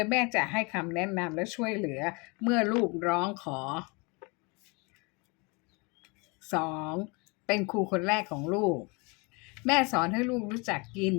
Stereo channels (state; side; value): quieter; right; 29.2 dB